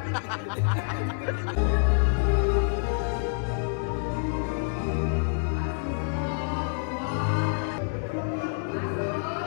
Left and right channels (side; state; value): right; silent; digital silence